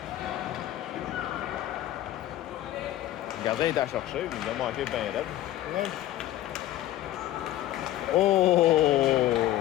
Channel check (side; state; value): right; quieter; 13.9 dB